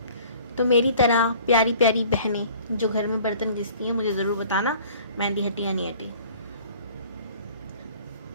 तो मेरी तरह प्यारी प्यारी बहनें जो घर में बर्तन घिसती हैं, मुझे ज़रूर बताना मेहंदी हटी या नहीं हटी।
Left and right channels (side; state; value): both; inverted; correlation -0.50